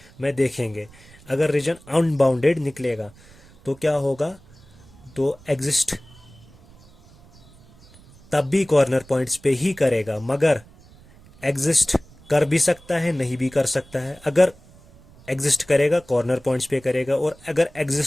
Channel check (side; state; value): right; noise; rumble, 25 dB below the sound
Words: में देखेंगे, अगर रीजन अनबाउंडेड निकलेगा तो क्या होगा? तो एग्जिस्ट तब भी कॉर्नर पॉइंट्स पे ही करेगा, मगर एग्जिस्ट कर भी सकता है, नहीं भी कर सकता है। अगर एग्जिस्ट करेगा कॉर्नर पॉइंट्स पे करेगा, और अगर